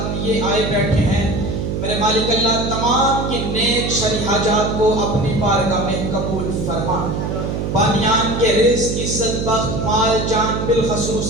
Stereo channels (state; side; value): noise; right; hum, 2 dB below the sound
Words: لیے آئے بیٹھے ہیں میرے مالک اللہ تمام کی نیک شرعی حاجات کو اپنی بارگاہ میں قبول فرما بانیان کے رزق عزت بخت مال جان